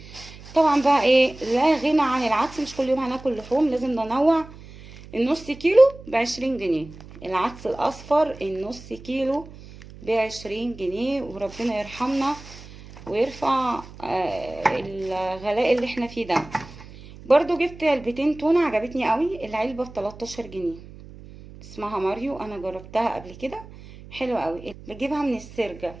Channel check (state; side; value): noise; right; hum, 18 dB below the sound